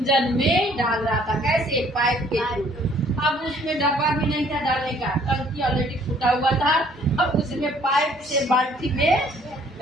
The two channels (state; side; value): normal; both; correlation 0.60